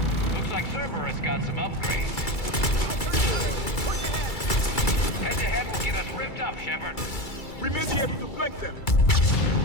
Looks like Cerberus got some upgrades. Head-to-head will get us ripped up, Shepard. We may be able to flank them.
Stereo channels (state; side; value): late; right; 2.3 ms